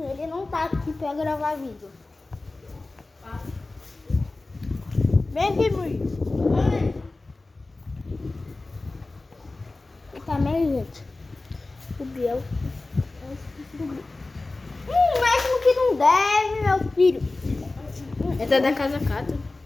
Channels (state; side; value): quieter; right; 3.2 dB